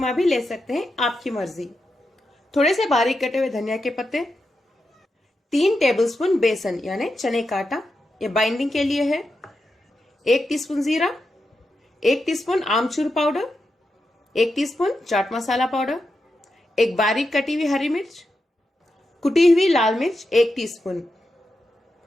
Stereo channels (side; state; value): both; normal; correlation 0.87